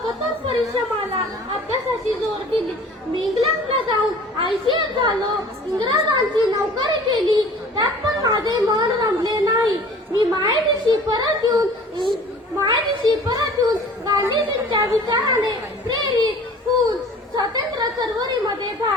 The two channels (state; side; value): normal; both; correlation 0.46